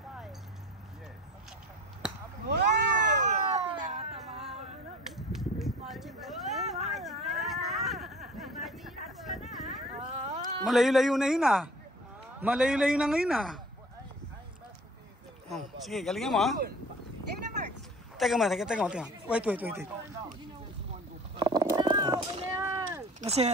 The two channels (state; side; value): normal; both; correlation 0.45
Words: Malayo-layo na yun ah. Malayo-layo na ngayon ah. Oh, sige, galingan mo ah. Teka mo. Wait. Kasi